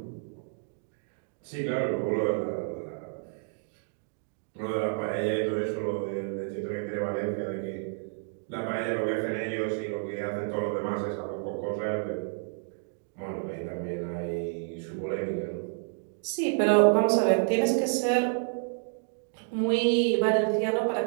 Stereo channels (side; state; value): left; silent; digital silence